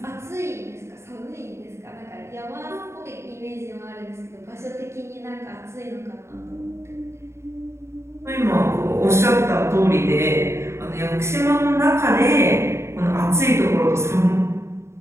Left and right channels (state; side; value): late; left; 0.13 ms